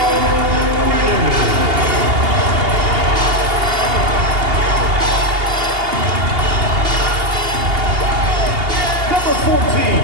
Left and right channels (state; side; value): late; left; 2.8 ms